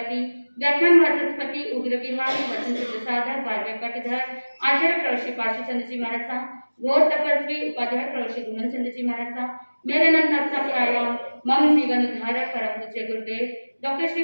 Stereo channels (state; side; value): inverted; both; correlation -1.00